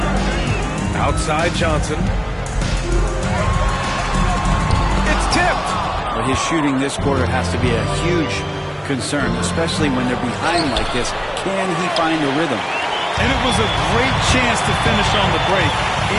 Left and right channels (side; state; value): both; identical; correlation 1.00